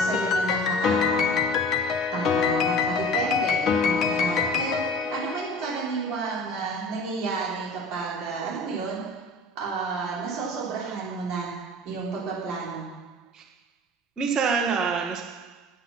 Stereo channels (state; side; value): normal; both; correlation 0.41